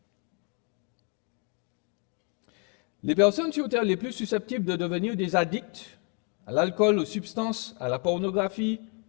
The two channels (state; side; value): quieter; right; 36.5 dB